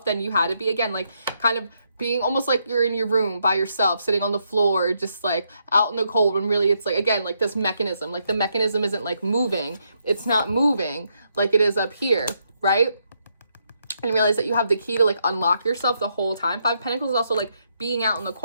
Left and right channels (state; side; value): inverted; both; correlation -0.78